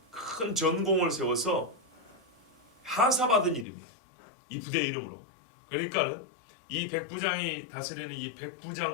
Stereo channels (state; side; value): drops out; right; at 3.7 s